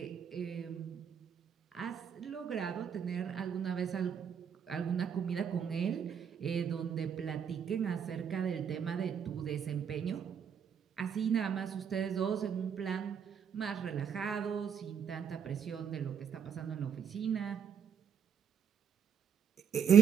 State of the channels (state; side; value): quieter; left; 7.7 dB